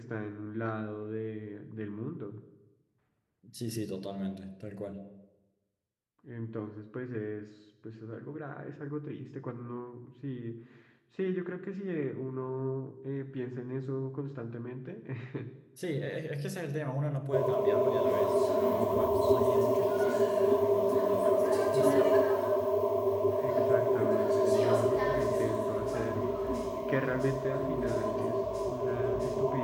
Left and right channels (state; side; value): identical; both; correlation 1.00